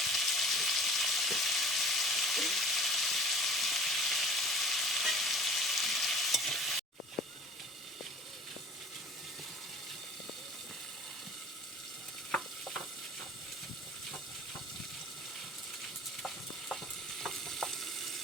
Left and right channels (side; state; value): both; normal; correlation 0.45